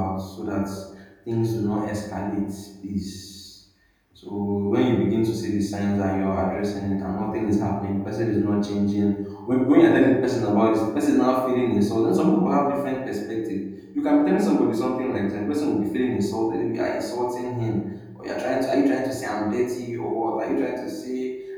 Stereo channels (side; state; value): both; identical; correlation 1.00